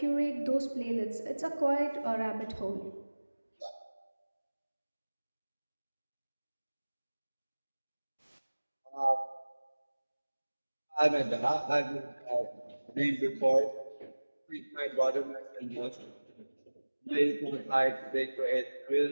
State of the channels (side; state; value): both; inverted; correlation -1.00